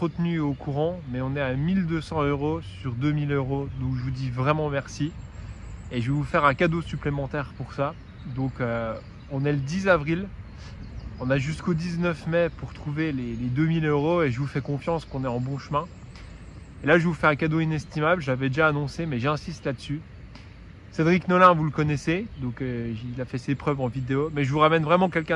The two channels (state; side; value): identical; both; correlation 1.00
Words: tenu au courant, mais on est à 1200 € sur 2000 €. Donc je vous dis vraiment merci. Et je vais vous faire un cadeau supplémentaire pour ça. Donc on est le 10 avril. On a jusqu'au 19 mai pour trouver les 2000 € et je vous fais confiance qu'on est en bon chemin. Et là, je vous fais un cadeau inestimable. J'avais déjà annoncé, mais j'insiste là-dessus. Cédric Nolin, vous le connaissez, donc il a fait ses preuves en vidéo. Mais je vous ramène vraiment